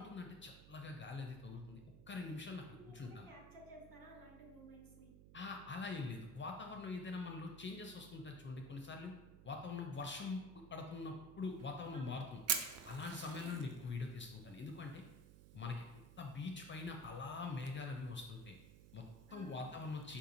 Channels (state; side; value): noise; right; hum, 15 dB below the sound